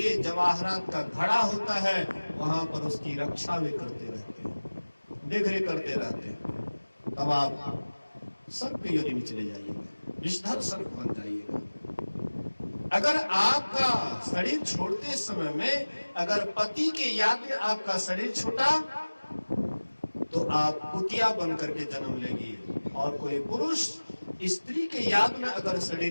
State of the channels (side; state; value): both; inverted; correlation -1.00